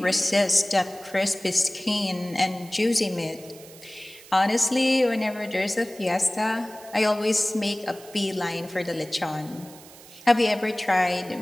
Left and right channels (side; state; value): right; noise; hiss, 20 dB below the sound